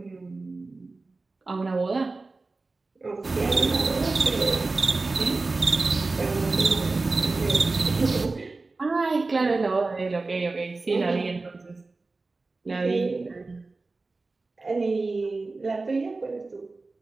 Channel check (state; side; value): quieter; left; 3.6 dB